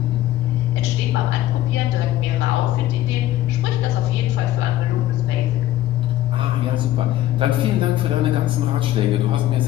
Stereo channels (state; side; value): quieter; right; 14.0 dB